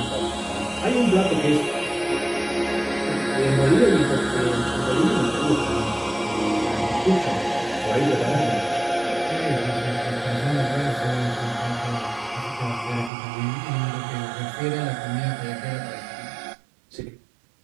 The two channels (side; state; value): left; drops out; at 13.1 s